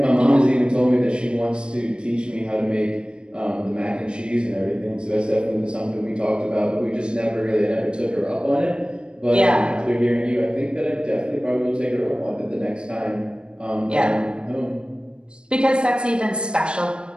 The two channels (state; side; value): late; left; 0.054 ms